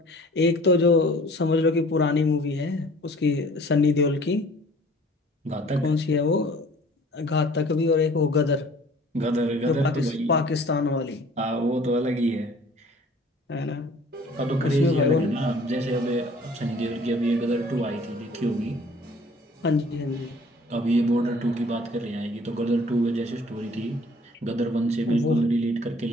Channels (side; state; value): both; normal; correlation 0.51